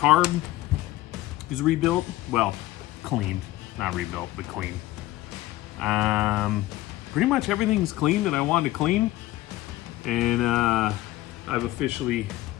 is rebuilt. Well, cleaned, not rebuilt, but cleaned. Pretty much everything's clean that I wanted to clean. And I've officially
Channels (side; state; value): right; quieter; 16.7 dB